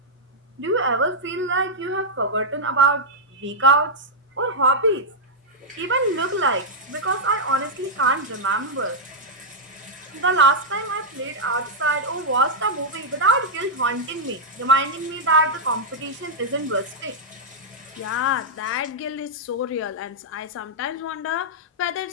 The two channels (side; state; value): both; normal; correlation -0.05